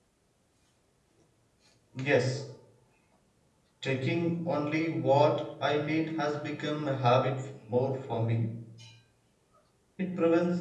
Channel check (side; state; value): both; identical; correlation 1.00